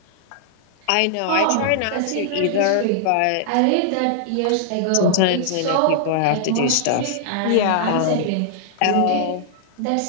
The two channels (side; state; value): both; different; correlation -0.01